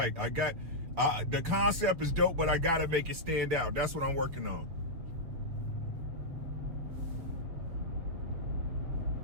The concept is dope, but I got to make it stand out. That's what I'm working on.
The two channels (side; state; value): left; late; 7.2 ms